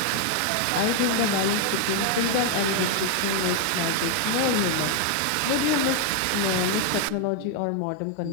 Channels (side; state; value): both; different; correlation 0.00